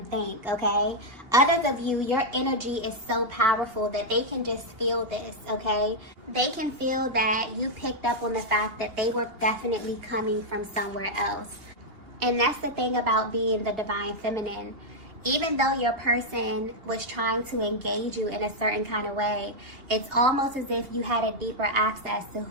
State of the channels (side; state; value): left; late; 2.8 ms